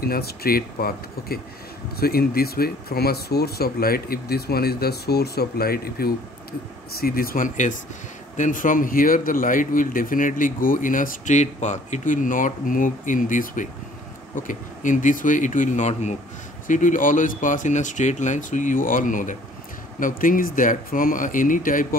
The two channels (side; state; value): both; normal; correlation 0.56